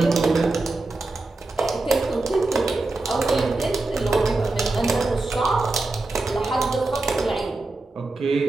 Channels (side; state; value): left; quieter; 3.2 dB